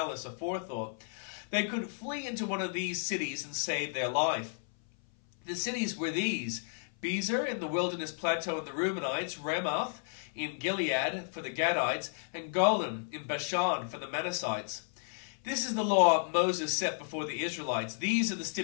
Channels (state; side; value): silent; right; 56 dB below the other